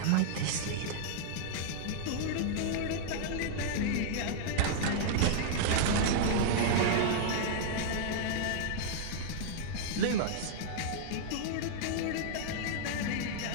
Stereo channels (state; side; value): different; both; correlation -0.01